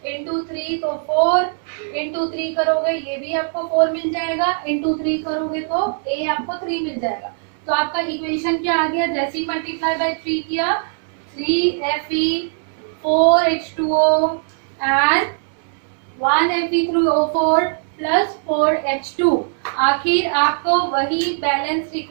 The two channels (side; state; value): left; silent; digital silence